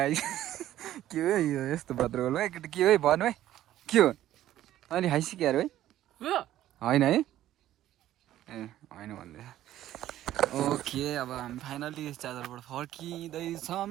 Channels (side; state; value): left; quieter; 13.2 dB